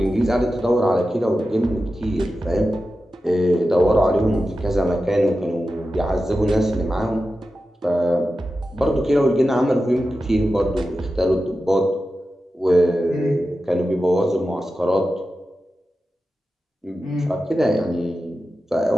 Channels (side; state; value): both; normal; correlation 0.92